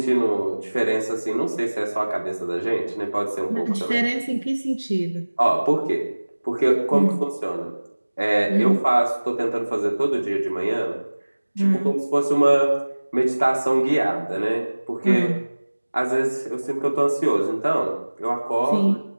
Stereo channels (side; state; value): both; inverted; correlation -1.00